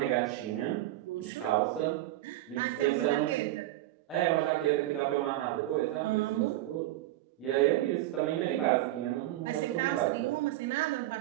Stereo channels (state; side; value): quieter; left; 15.5 dB